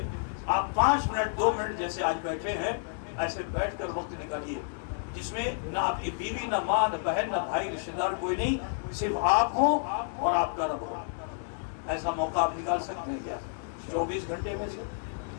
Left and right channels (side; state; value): right; silent; digital silence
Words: آپ 5 منٹ 2 منٹ جیسے آج بیٹھے ہیں ایسے بیٹھ کر وقت نکالیے جس میں نہ آپ کی بیوی، نہ ماں، نہ بہن، نہ بھائی، رشتہ دار کوئی نہیں، صرف آپ ہوں اور آپ کا رب ہو۔ ایسا موقع آپ نکال سکتے ہیں کیا 24 گھنٹے میں سے